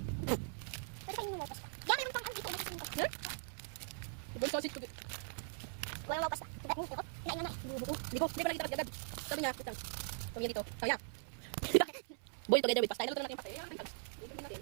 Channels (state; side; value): silent; left; 51 dB below the other